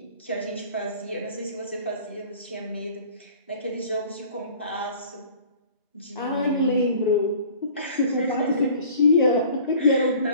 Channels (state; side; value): inverted; both; correlation -0.48